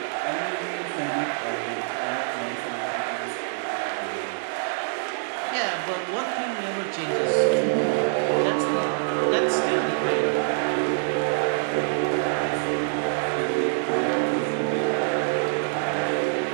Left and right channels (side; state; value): left; silent; 61 dB below the other